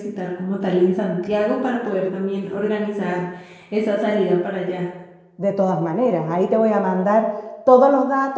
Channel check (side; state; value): both; identical; correlation 1.00